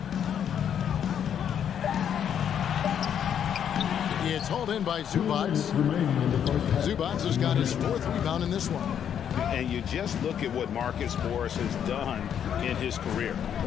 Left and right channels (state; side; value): quieter; right; 8.9 dB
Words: It's hauled in by Zubac. Zubac has got his 4th rebound in this one. And you just look at what Marcus Morris has done in his career.